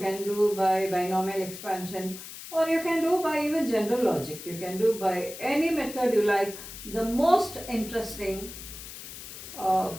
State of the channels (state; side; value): noise; left; hiss, 12 dB below the sound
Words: do by binomial expansion, or you can do by even general logic. You can do by any method you like. The most interesting